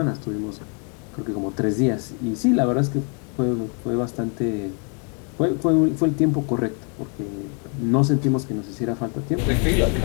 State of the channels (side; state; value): right; quieter; 38.6 dB